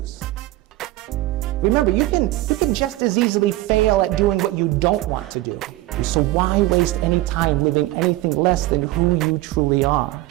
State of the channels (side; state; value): left; quieter; 17.4 dB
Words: Remember, you can just as easily fail at doing what you don't want to do. So why waste any time living anything less than who you truly are?